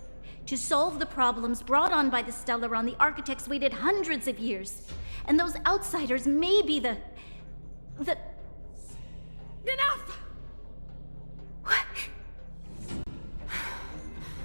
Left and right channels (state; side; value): inverted; both; correlation -1.00